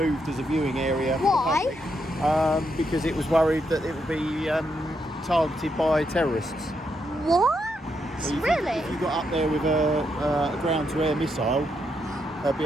as a viewing area. Why? Because it was worried that it would be targeted by terrorists. What? So Really? If you got up there with a ground-to-air missile, there'd be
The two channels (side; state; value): both; normal; correlation 0.80